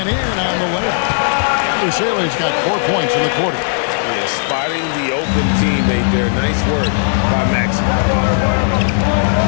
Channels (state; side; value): silent; right; digital silence